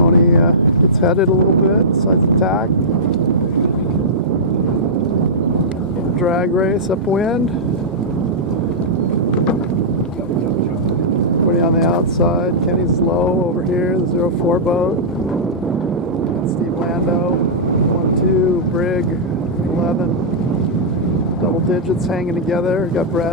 gets headed a little bit, decides to tack. Drag race upwind. Everybody on the outside. Kenny's low over here, the 0-4 boat. Steve Lando, 1-2, Brig, 11. Double digits hanging together. Got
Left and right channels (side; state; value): both; normal; correlation -0.13